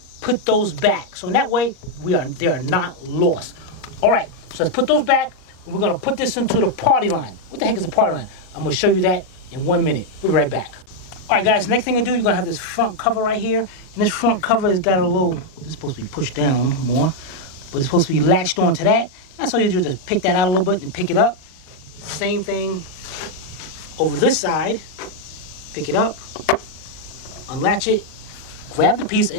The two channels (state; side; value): late; right; 38 ms